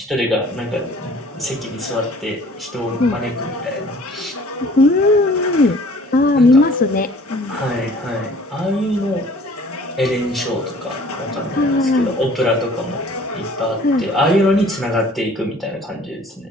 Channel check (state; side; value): normal; both; correlation 0.51